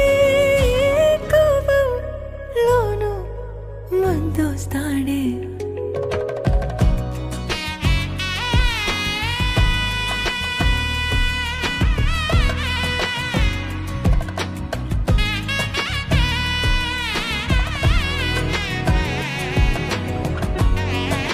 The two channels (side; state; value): both; identical; correlation 1.00